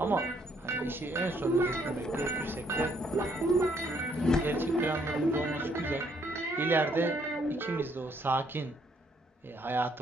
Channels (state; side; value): normal; both; correlation 0.68